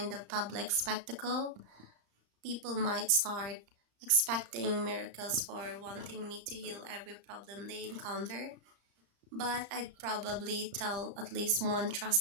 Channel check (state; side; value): late; left; 34 ms